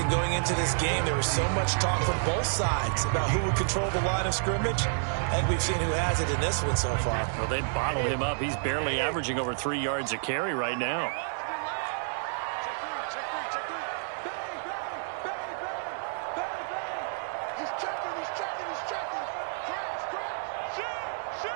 going into this game. There was so much talk from both sides about who would control the line of scrimmage. And we've seen who has it in this one so far. Well, they bottled him up. He's barely averaging over 3 yards a carry right now. Check three. Bang, bang, bang, bang, bang, bang. He's checking. Crash.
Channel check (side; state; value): left; silent; digital silence